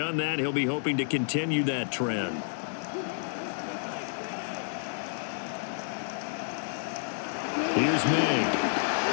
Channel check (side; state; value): right; silent; digital silence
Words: that. He'll be hoping to continue that trend. Here's May.